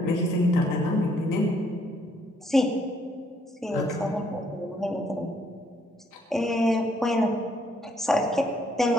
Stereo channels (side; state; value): both; normal; correlation 0.68